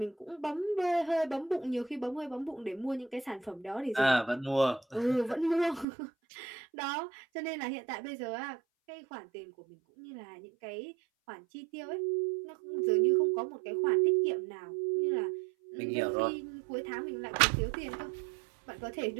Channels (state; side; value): drops out; left; at 5.9 s